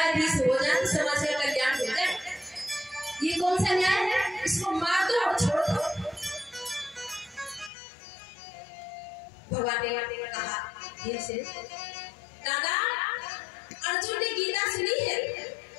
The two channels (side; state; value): right; drops out; at 7.7 s